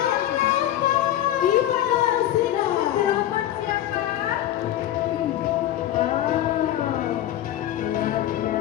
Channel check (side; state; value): right; quieter; 12.6 dB